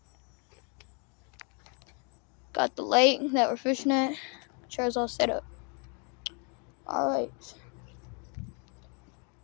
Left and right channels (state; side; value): quieter; right; 36.2 dB